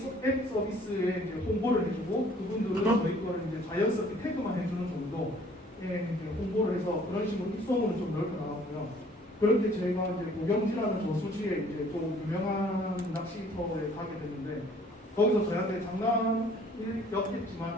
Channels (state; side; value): normal; both; correlation 0.56